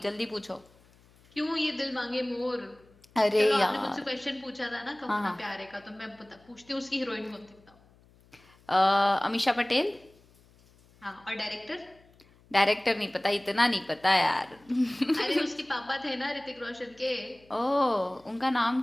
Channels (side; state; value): left; noise; hum, 29 dB below the sound